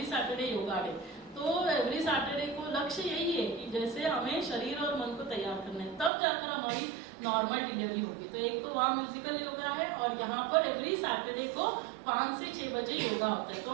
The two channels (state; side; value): drops out; left; at 6.1 s